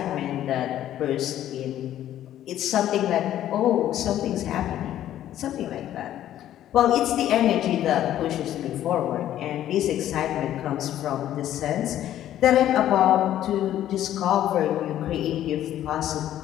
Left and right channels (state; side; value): quieter; right; 12.1 dB